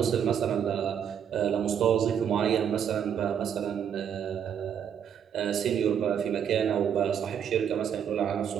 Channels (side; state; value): left; quieter; 8.4 dB